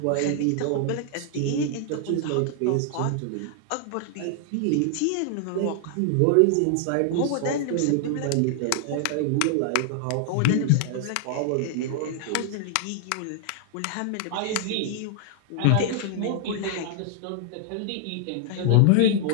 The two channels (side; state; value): both; different; correlation 0.00